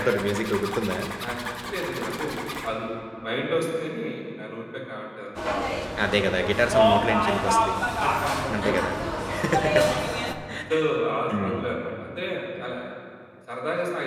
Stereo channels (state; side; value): identical; both; correlation 1.00